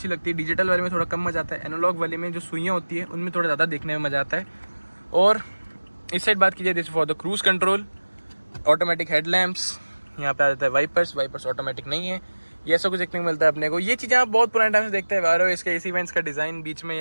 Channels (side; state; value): both; inverted; correlation -1.00